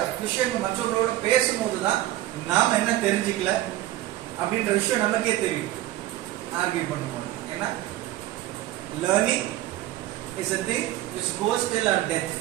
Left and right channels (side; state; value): left; quieter; 14.8 dB